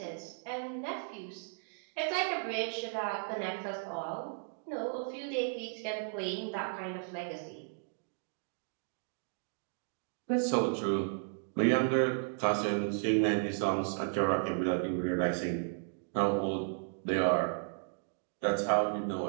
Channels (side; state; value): left; silent; digital silence